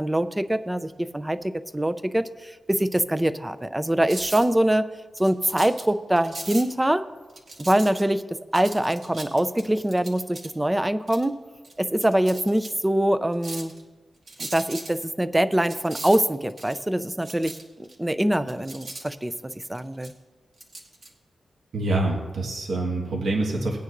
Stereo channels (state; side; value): normal; both; correlation 0.97